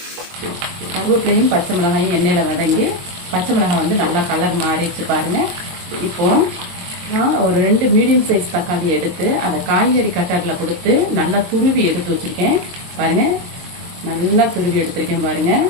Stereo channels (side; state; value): left; late; 22 ms